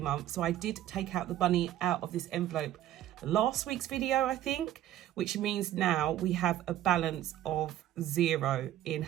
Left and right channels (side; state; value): left; quieter; 12.6 dB